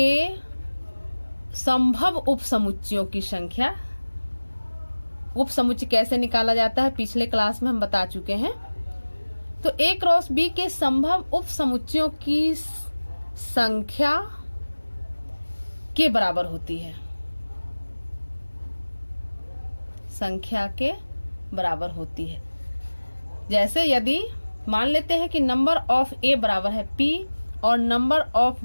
संभव उपसमुच्चयों की संख्या। उपसमुच्चय कैसे निकाला जाता है पिछले क्लास में हम बता चुके हैं। तो A क्रॉस B के संभव उपसमुच्चयों की संख्या के बराबर होती है, संख्या के बराबर होती है। जैसे यदि मान लेते हैं कि नंबर ऑफ A बराबर है P और नंबर ऑफ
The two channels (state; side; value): inverted; both; correlation -1.00